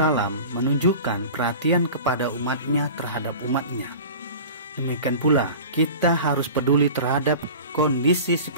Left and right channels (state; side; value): inverted; both; correlation -0.37